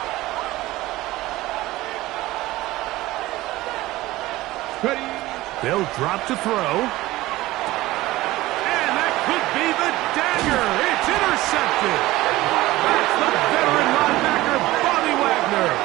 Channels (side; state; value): left; quieter; 17.8 dB